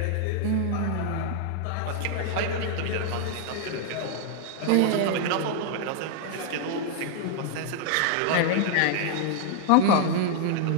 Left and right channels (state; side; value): different; both; correlation 0.00